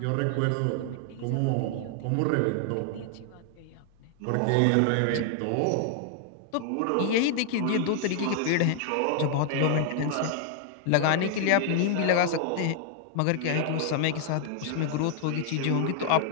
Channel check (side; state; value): both; different; correlation 0.00